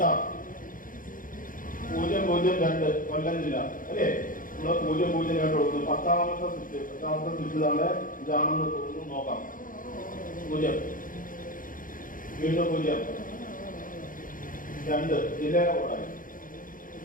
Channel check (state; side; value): late; right; 0.39 ms